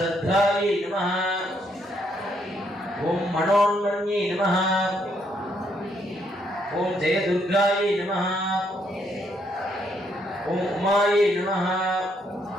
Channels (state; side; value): normal; both; correlation 0.73